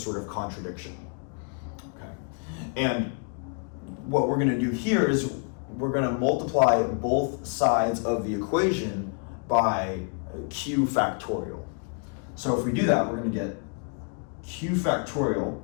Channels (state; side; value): quieter; right; 38.8 dB